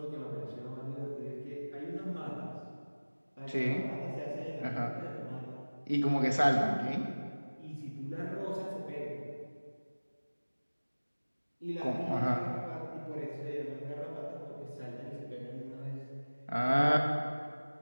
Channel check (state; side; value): inverted; both; correlation -1.00